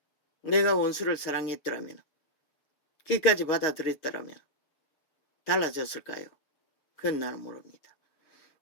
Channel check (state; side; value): late; right; 6.8 ms